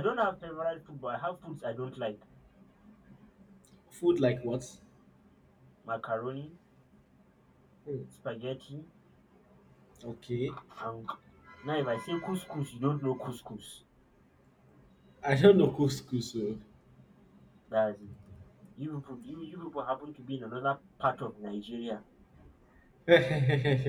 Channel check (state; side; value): identical; both; correlation 1.00